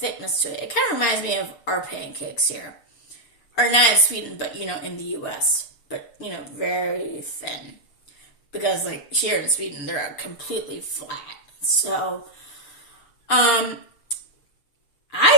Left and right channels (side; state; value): right; late; 6.8 ms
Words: to it. It kind of reminds me of our pancakes here, or not in Sweden, but, in the U.S., but, very thin, because, here in Sweden, they're completely flat. So, I